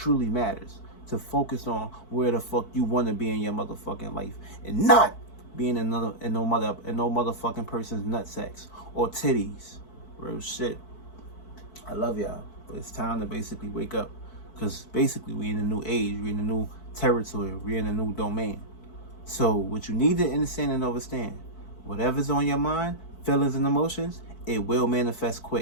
matters to focus on where the fuck you want to be in your motherfucking life, and not being in no motherfucking person's nutsacks or titties. Real shit. I love y'all, but it's time to basically wake up, because basically we in a new age, we in a new territory, we in a new domain. So what you need to understand and understand, whatever's on your mind, feelings and emotions, it will manifest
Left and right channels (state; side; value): late; right; 4.6 ms